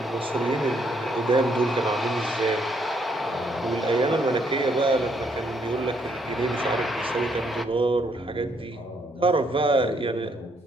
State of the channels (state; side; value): normal; both; correlation 0.71